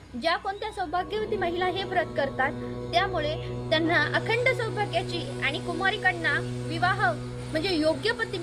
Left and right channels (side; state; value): both; identical; correlation 1.00